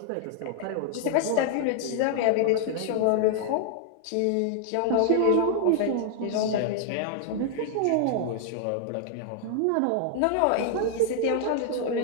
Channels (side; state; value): both; different; correlation -0.01